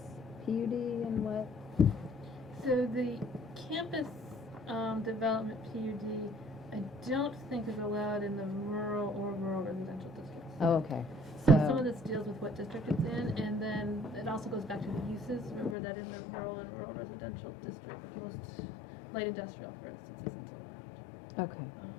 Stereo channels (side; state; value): right; drops out; at 15.8 s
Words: PUD and what? So the campus development PUD, I don't think is allowed in the rural or rural residential districts. Oh, okay. Some of this deals with what district it's in, and then it also goes back to the uses. Remember that in the rural and rural residential district, most light industrial, for instance, isn't allowed. Okay.